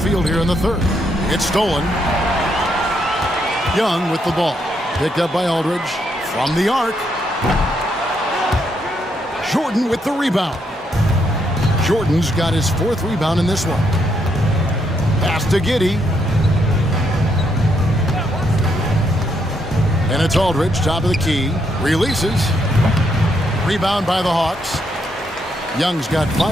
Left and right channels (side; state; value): both; normal; correlation 0.76